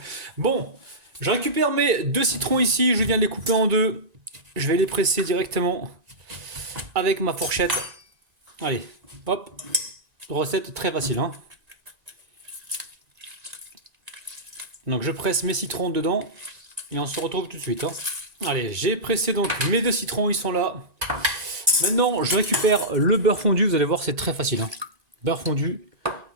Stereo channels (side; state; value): left; late; 1.9 ms